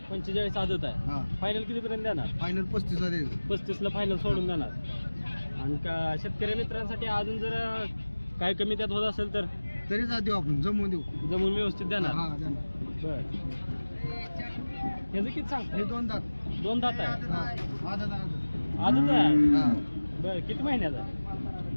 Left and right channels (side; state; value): both; inverted; correlation -1.00